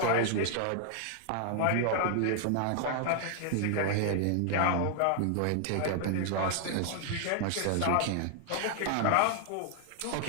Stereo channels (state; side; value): different; both; correlation 0.00